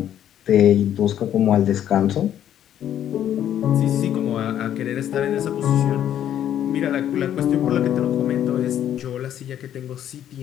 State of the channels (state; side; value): quieter; right; 10.7 dB